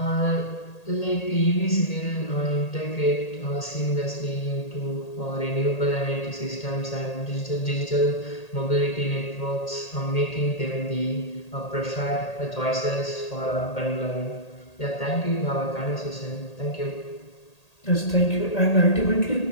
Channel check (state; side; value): late; right; 1.8 ms